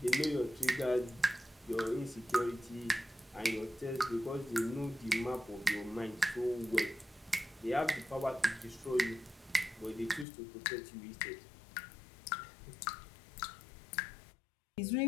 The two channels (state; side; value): drops out; right; at 10.2 s